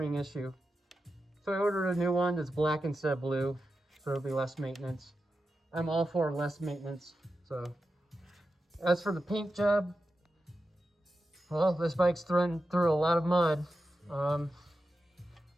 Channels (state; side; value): normal; both; correlation 0.90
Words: issue. So I ordered a new one that's black instead of blue. So it'll be less maintenance. I'm all for less maintenance. So as for the paint job, well, this bike's through a lot of mud. I